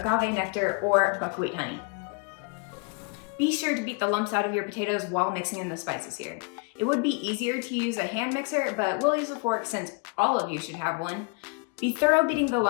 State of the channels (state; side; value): quieter; right; 33.4 dB